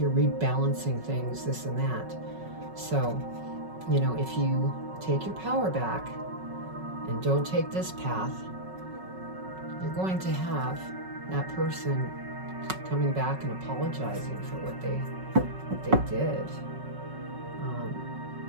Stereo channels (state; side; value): late; left; 5.4 ms